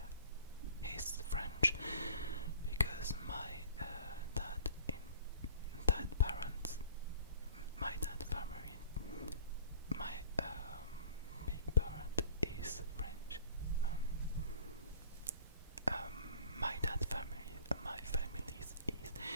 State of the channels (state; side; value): inverted; both; correlation -0.50